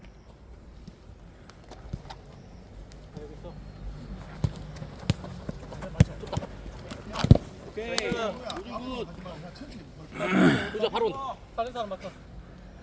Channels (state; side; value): identical; both; correlation 1.00